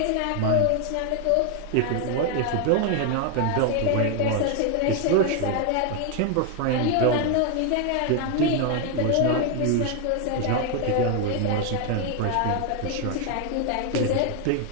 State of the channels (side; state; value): both; different; correlation 0.01